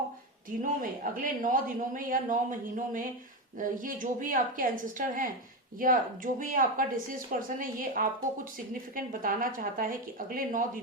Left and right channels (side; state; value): both; normal; correlation 0.14